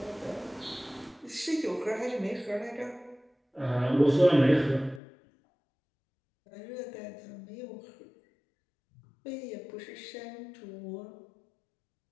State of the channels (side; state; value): right; drops out; at 5.0 s